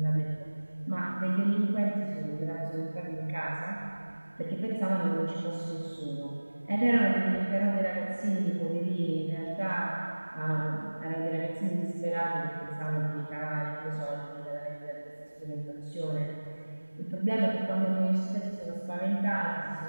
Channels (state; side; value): inverted; both; correlation -1.00